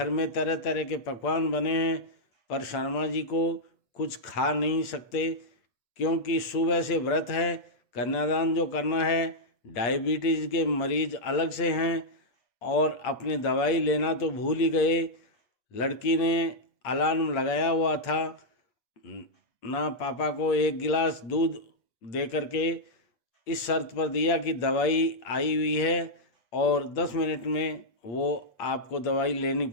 में तरह तरह के पकवान बने हैं, पर शर्मा जी को कुछ खा नहीं सकते, क्योंकि सुबह से व्रत है, कन्यादान जो करना है, डायबिटीज़ के मरीज अलग से हैं और अपनी दवाई लेना तो भूल ही गए। लड़की ने अलार्म लगाया हुआ था, ना पापा को एक गिलास दूध दे करके इस शर्त पर दिया कि दवाई आई हुई है और 10 मिनट में वो आपको दवाई लेनी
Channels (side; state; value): right; late; 8.3 ms